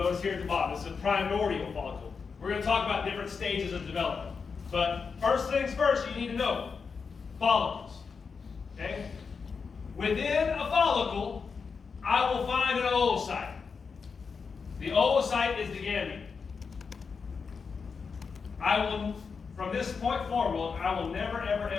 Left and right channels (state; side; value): quieter; right; 5.4 dB